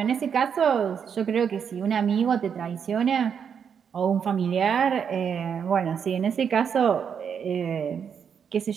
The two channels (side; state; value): left; quieter; 7.3 dB